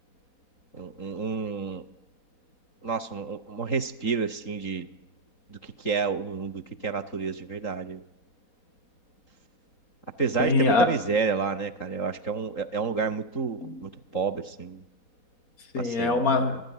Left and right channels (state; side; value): late; right; 3.8 ms